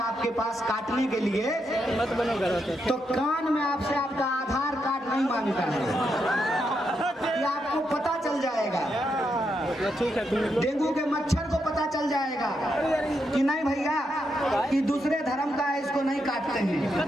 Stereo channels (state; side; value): normal; both; correlation 0.82